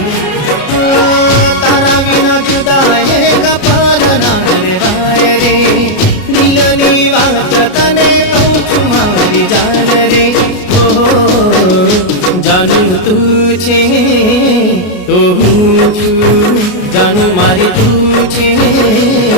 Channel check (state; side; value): late; right; 33 ms